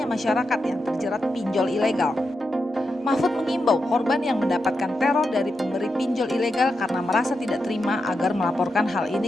masyarakat yang terjerat pinjol ilegal. Mahfud mengimbau korban yang mendapatkan teror dari pemberi pinjol ilegal karena merasa tidak terima agar melaporkan hal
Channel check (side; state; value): both; normal; correlation 0.87